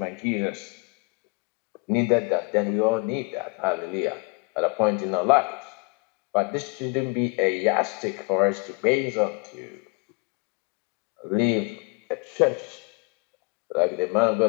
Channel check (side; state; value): right; quieter; 32.5 dB